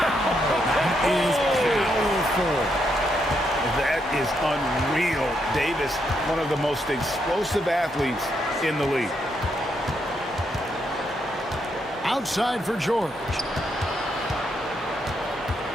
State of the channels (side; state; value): both; normal; correlation 0.78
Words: That is powerful. That is unreal. Davis, one of the most explosive athletes in the league. Outside for George.